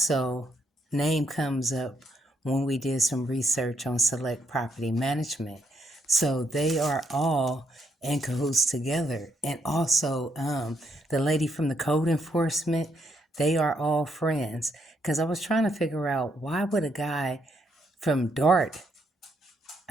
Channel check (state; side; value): normal; both; correlation 0.75